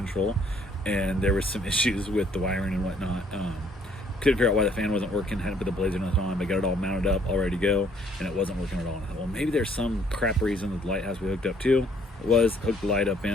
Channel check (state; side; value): normal; both; correlation 0.63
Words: and there was some issues with the wiring and whatnot. Couldn't figure out why the fan wasn't working, hadn't put the blades or nothing on. I got it all mounted up, all ready to go, and it wasn't working at all. And I thought, well, maybe there's some crap reason that the light has to be hooked up too. It was, hooked the light up